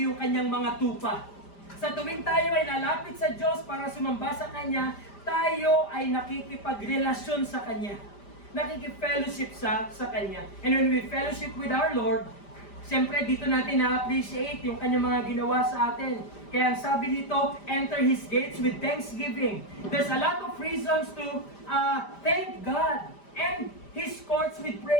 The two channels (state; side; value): late; right; 5.0 ms